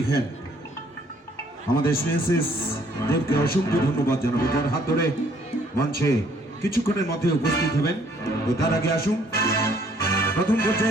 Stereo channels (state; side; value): normal; both; correlation 0.63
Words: আমাদের স্নেহাশিস দেবকে অসংখ্য ধন্যবাদ জানাবো, যার হাত ধরে মঞ্চে কিছুক্ষণের মধ্যে উপস্থিত হবেন। তো তার আগে আসুন, প্রথম